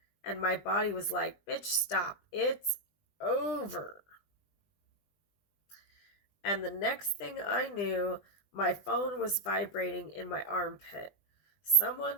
and my body was like, bitch, stop, it's over. And the next thing I knew, my phone was vibrating in my armpit.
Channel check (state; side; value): late; right; 20 ms